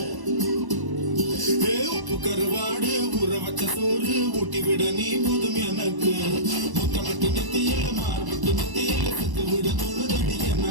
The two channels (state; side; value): late; left; 1.1 ms